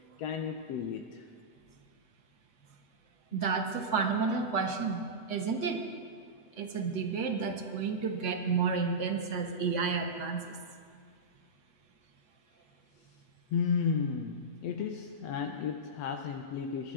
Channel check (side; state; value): right; late; 8.0 ms